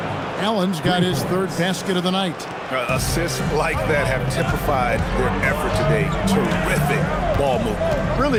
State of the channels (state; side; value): identical; both; correlation 1.00